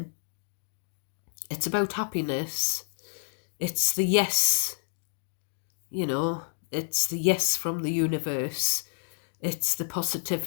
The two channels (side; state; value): right; silent; digital silence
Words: It's about happiness. It's the yes, it's the yes from the universe. It's the